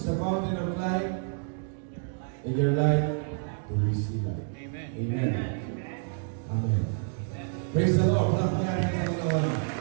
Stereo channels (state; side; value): silent; left; 59 dB below the other